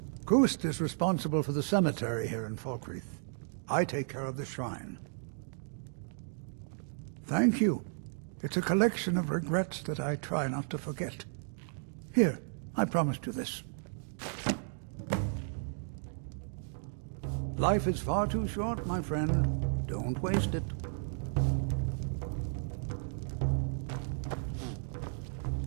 Gust is responsible for the cemetery here in Falkreath. I take care of the shrine. Thank you. It's a collection of regrets that I try not to forget. Here, I promised you this. Life is far too short, my friend. Don't waste it.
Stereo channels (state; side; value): silent; left; digital silence